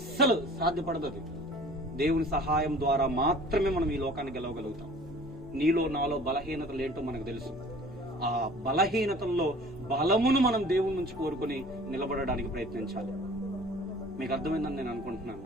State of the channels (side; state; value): both; normal; correlation 0.48